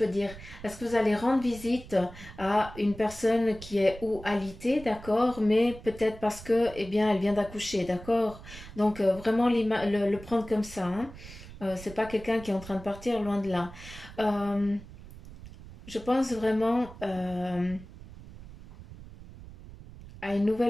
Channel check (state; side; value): noise; right; rumble, 16 dB below the sound